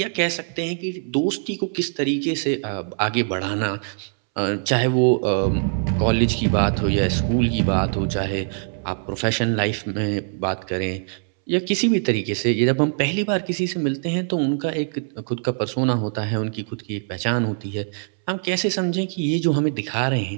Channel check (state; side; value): silent; left; 64 dB below the other